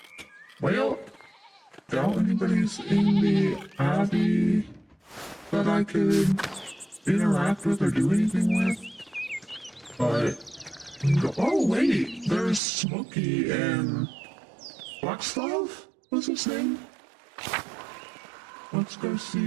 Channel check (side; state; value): left; drops out; at 12.6 s